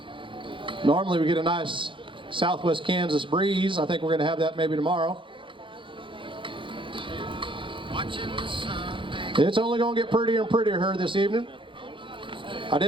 Normally we get a nice southwest Kansas breeze. I think we're going to have that maybe tomorrow. It's only going to get prettier and prettier here this evening. I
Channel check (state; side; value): late; left; 0.24 ms